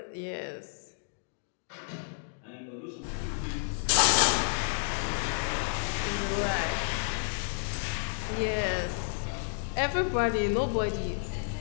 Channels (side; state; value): right; silent; digital silence